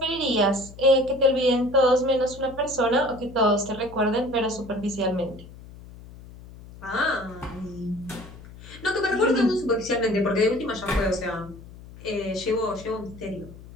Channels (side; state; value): left; noise; hum, 18 dB below the sound